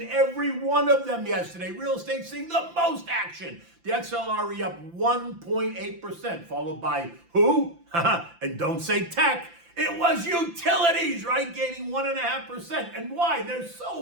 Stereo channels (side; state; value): left; late; 5.8 ms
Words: every one of them yesterday. Real estate seeing the most action. The XLRE up 1.8%, followed by who? And don't say tech. It was utilities, right? Gaining 1.5%. And why? They're